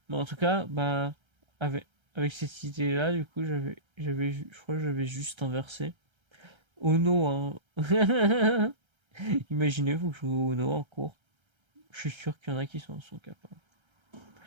Mais en tout cas, bah avec cette idée-là, du coup, je crois que j'avais juste inversé. Ono, hein. Imaginez-vous jouer au Ono en cours. Je suis sûr qu'il y en a qui sont capables.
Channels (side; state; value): left; late; 1.3 ms